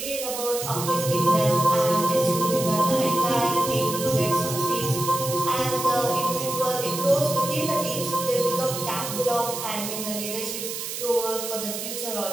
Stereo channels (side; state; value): right; noise; hiss, 6 dB below the sound